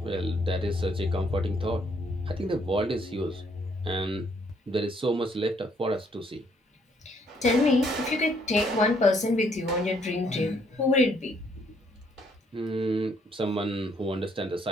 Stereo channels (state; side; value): normal; both; correlation 0.68